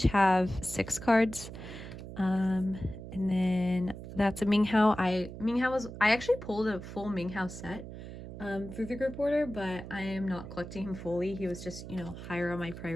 have 6 cards. And then that's a Minghao. I actually pulled a full Minghao set through the group order, but I am not collecting him fully. He was just, you know, higher on my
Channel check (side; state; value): right; noise; hum, 11 dB below the sound